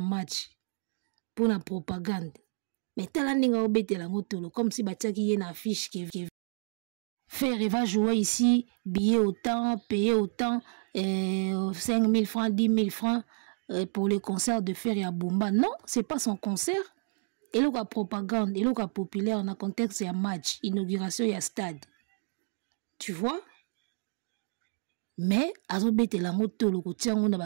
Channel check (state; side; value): silent; left; digital silence